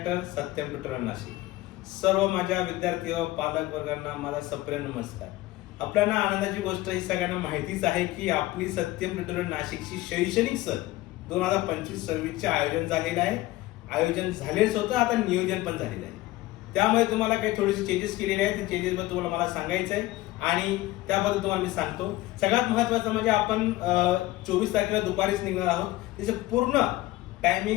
Satyam tutorial Nashik. सर्व माझ्या विद्यार्थी व पालक वर्गांना माझा सप्रेम नमस्कार. आपल्याला आनंदाची गोष्ट ही सगळ्यांना माहितीच आहे की आपली सत्यम ट्युटोरियल नाशिकची शैक्षणिक सहल 2025-26 चे आयोजन झालेलं आहे. आयोजन झालेच होतं, आता नियोजन पण झालेलं आहे. त्यामुळे तुम्हाला काही थोडेसे चेंजेस केलेले आहेत. ते चेंजेस बद्दल तुम्हाला मला सांगायचं आहे आणि त्याबद्दल तुम्हाला मी सांगतो. सगळ्यात महत्त्वाचं म्हणजे आपण 24 तारखेला दुपारीच निघणार आहोत. त्याचे पूर्ण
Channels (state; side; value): quieter; right; 17.7 dB